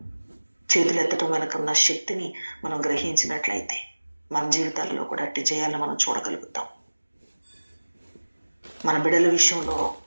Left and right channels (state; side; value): inverted; both; correlation -1.00